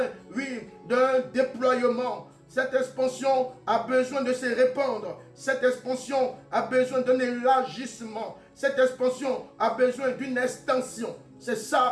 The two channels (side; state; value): both; identical; correlation 1.00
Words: oui, d'un déploiement. Cette expansion a besoin de se répandre. Cette expansion a besoin d'un élargissement. Cette expansion a besoin d'une extension. C'est